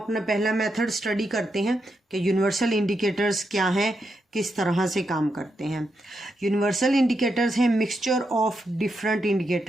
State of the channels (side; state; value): both; normal; correlation 0.84